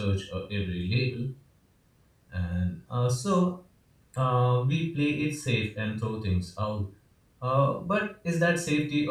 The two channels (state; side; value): identical; both; correlation 1.00